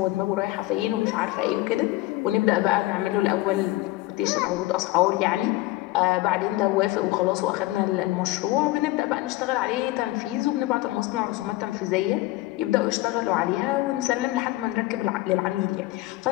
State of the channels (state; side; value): quieter; right; 18.7 dB